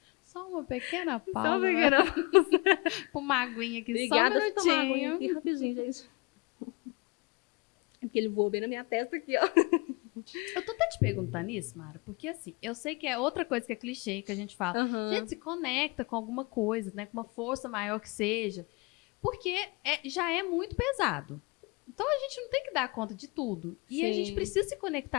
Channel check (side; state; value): right; quieter; 28.1 dB